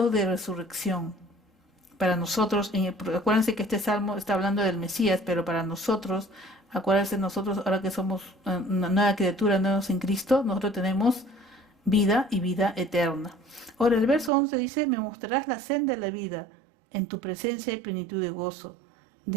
de resurrección. para nosotros, acuérdense que este salmo está hablando del Mesías, pero para nosotros, acuérdense nosotros ahora que somos una nueva criatura, nuevos en Cristo, nosotros tenemos vida y vida eterna. Ahora el verso 11 dice, me mostrarás la senda de la vida, en tu presencia hay plenitud de gozo,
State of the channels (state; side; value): drops out; left; at 14.3 s